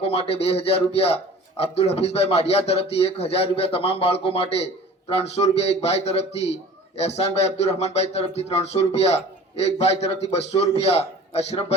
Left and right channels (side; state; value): both; normal; correlation 0.43